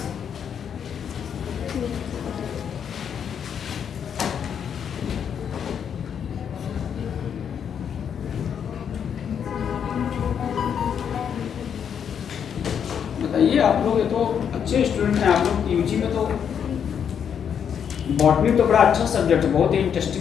बताइए आप लोग, ये तो अच्छे स्टूडेंट हैं आप लोग। यूजी में तो बॉटनी तो बड़ा अच्छा सब्जेक्ट है, बहुत ही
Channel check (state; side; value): quieter; right; 7.9 dB